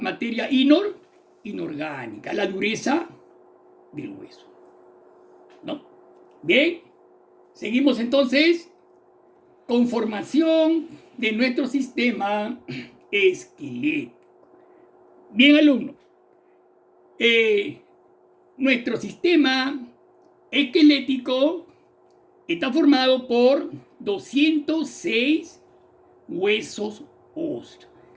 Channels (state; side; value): identical; both; correlation 1.00